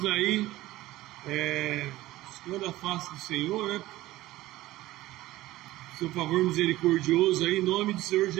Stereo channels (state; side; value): quieter; left; 16.9 dB